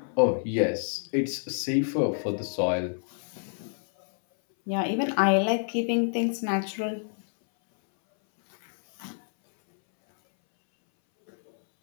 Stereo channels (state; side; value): silent; right; 60 dB below the other